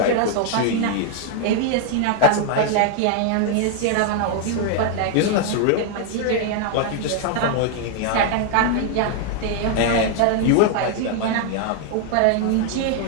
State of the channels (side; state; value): both; different; correlation 0.00